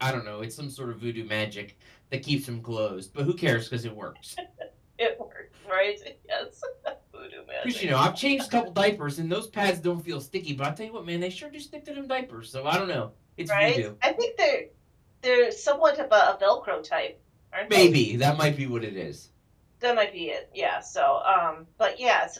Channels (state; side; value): identical; both; correlation 1.00